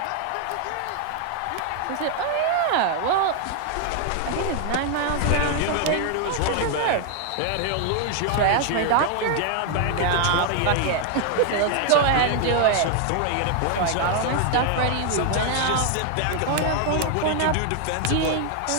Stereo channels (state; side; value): different; both; correlation 0.00